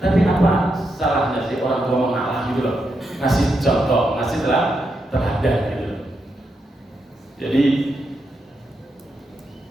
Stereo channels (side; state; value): both; normal; correlation 0.84